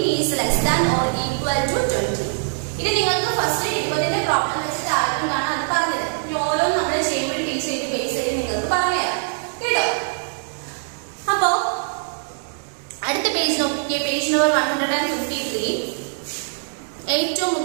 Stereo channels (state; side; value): silent; left; digital silence